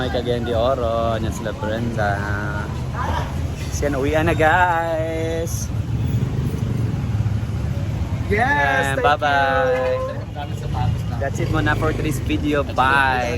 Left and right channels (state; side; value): identical; both; correlation 1.00